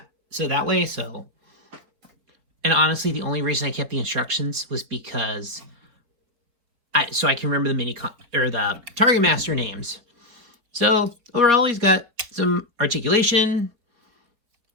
so that way, so. And honestly, the only reason I kept the instructions was because so I can remember the the Targetmaster names. So overall, he's got some articulation.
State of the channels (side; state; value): left; late; 4.6 ms